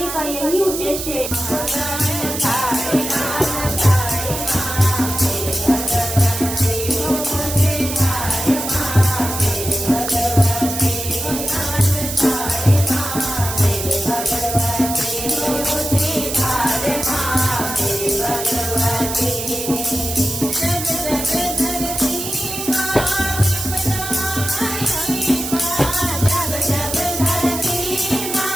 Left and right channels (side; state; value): right; noise; hiss, 6 dB below the sound